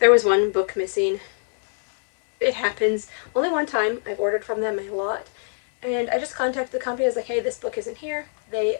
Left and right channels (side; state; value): right; silent; digital silence